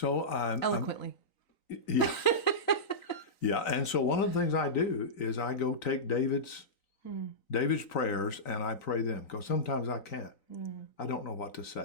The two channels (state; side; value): late; right; 3.9 ms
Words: eloquently. Yeah. Yeah. And so one of the things I do is I go take David's prayers and I pray them because sometimes I can't. I don't know what to